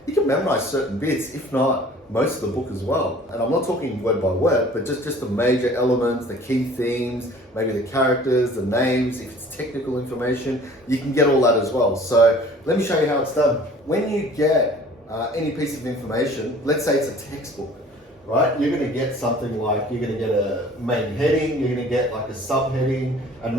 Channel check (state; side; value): normal; both; correlation 0.49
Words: you can memorize certain bits, if not most of the book as well. And I'm not talking word by word, but just the major elements, the key themes, maybe the characters, the names, if it's technical information, you can get all that as well. So let me show you how it's done. When you get any piece of information, let's say it's a textbook, right? You're going to get something like, you're going to get a main heading, you're going to get like a subheading, and